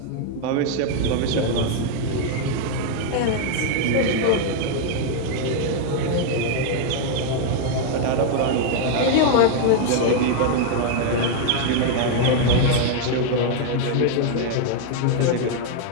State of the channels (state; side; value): different; both; correlation 0.00